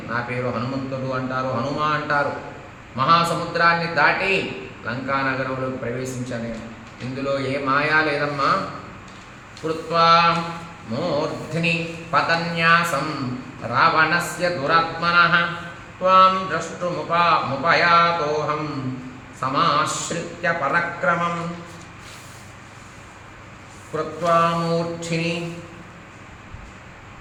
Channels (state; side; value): identical; both; correlation 1.00